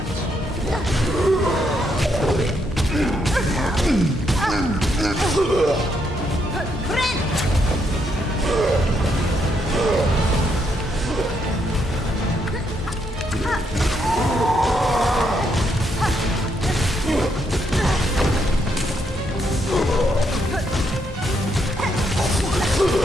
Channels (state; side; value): normal; both; correlation 0.76